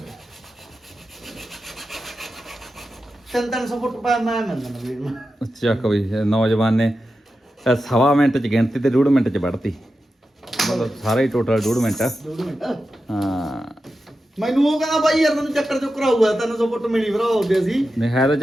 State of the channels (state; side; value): normal; both; correlation 0.91